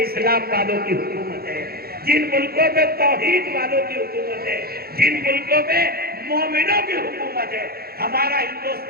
اسلام والوں کی حکومت ہے، جن ملکوں پہ توحید والوں کی حکومت ہے، جن ملکوں پہ مومنوں کی حکومت ہے۔ ہمارا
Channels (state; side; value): late; left; 0.45 ms